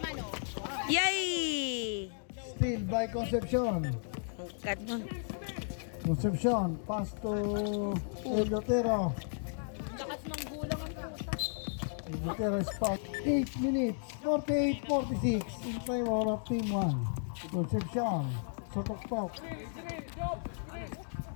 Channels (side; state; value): right; silent; digital silence